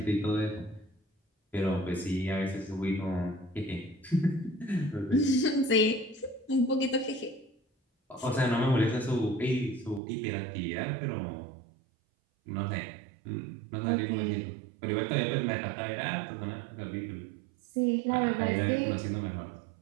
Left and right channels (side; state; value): left; drops out; at 10.0 s